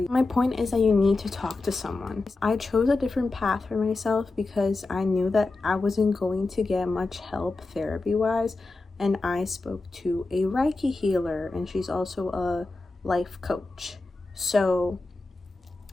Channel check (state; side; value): quieter; right; 3.4 dB